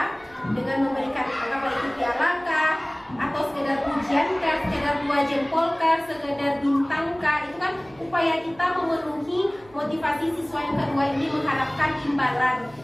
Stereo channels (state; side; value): noise; right; hum, 26 dB below the sound